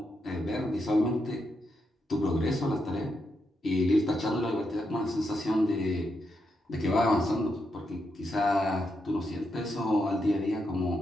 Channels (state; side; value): normal; both; correlation 0.83